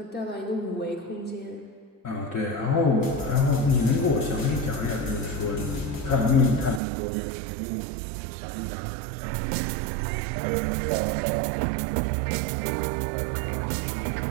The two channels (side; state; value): left; drops out; at 6.8 s